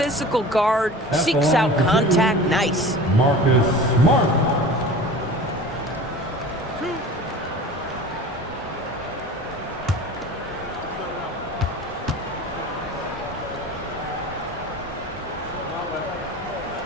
guard, seeks out contact. Nice. Marcus Smart.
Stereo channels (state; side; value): normal; both; correlation 0.38